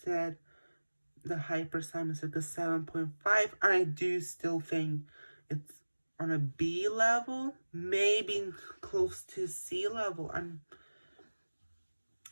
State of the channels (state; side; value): inverted; both; correlation -1.00